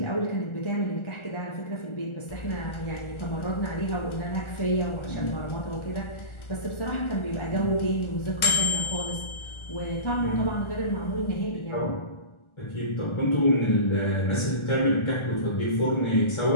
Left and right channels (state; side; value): late; right; 1.4 ms